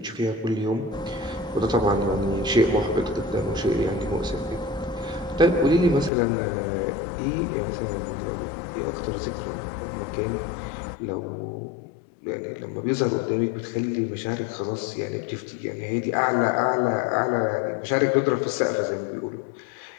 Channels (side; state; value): right; drops out; at 6.1 s